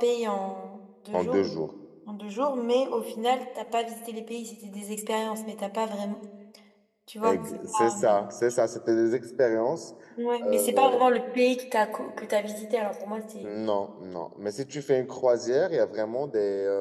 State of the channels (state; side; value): identical; both; correlation 1.00